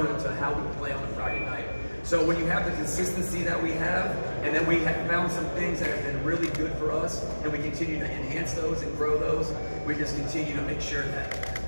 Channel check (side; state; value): both; inverted; correlation -1.00